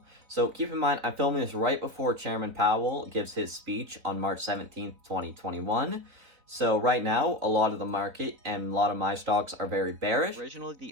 So keep in mind, I'm filming this right before Chairman Powell gives his speech on March 17th, 2021. So right now, a lot of the market and a lot of my stocks are very bearish. Originally,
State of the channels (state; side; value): late; left; 4.0 ms